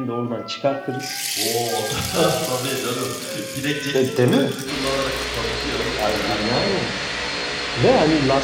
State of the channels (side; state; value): both; identical; correlation 1.00